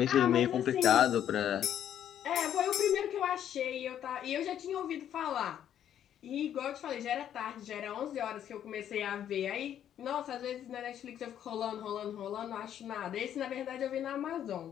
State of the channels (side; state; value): right; quieter; 10.2 dB